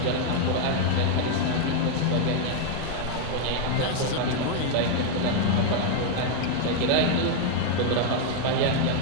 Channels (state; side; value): different; both; correlation 0.00